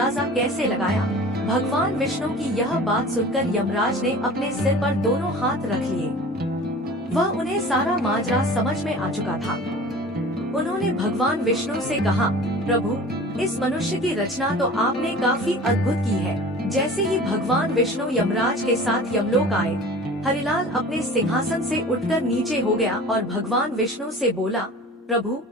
कैसे लगाया? भगवान विष्णु की यह बात सुनकर यमराज ने अपने सिर पर दोनों हाथ रख लिए। वह उन्हें सारा माजरा समझ में आ चुका था। उन्होंने भगवान विष्णु से कहा, प्रभु, इस मनुष्य की रचना तो आपने काफी अद्भुत की है। जैसे ही भगवान विष्णु यमराज के साथ यमलोक आए, हरिलाल अपने सिंहासन से उठकर नीचे हो गया और भगवान विष्णु से बोला, प्रभु,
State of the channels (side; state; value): both; normal; correlation 0.41